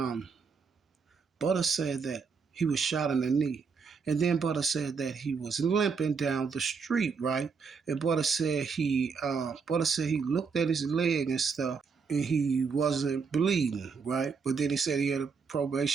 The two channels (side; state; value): left; quieter; 5.4 dB